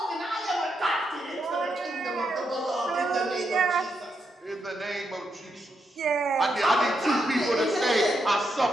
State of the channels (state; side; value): normal; both; correlation 0.81